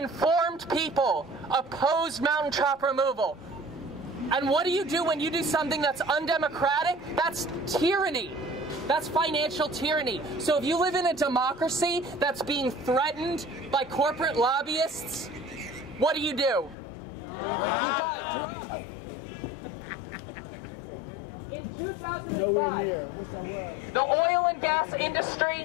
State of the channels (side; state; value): right; drops out; at 16.8 s